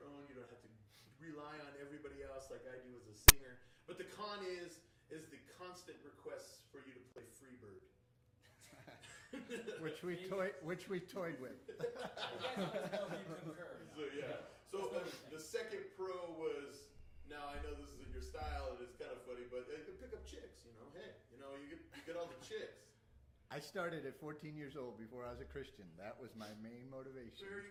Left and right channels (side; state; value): both; identical; correlation 1.00